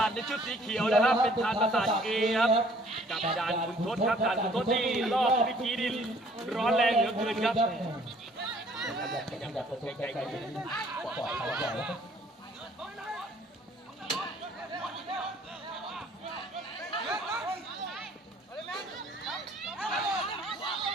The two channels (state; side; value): normal; both; correlation 0.58